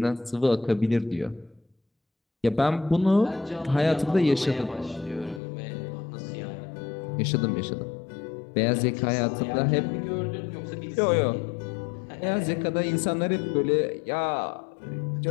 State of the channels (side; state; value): right; drops out; at 5.4 s